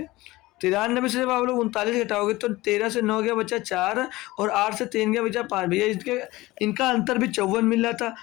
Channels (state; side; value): quieter; right; 19.3 dB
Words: 93 से जब आप लोग 39 घटाओगे तो 13 से 9 गया बचा 4 और 8 से 3 गया बचा 5 भैया, इसके इनका अंतर भी 54 मिल रहा था।